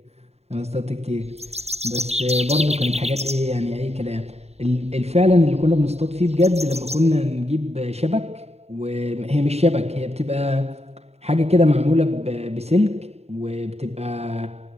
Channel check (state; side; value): late; left; 0.31 ms